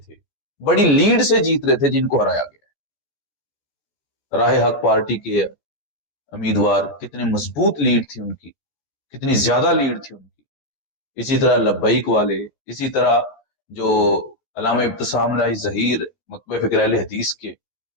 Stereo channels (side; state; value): right; late; 14 ms